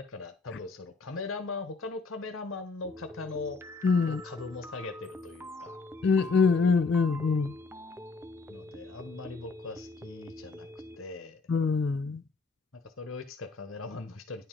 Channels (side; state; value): right; quieter; 4.3 dB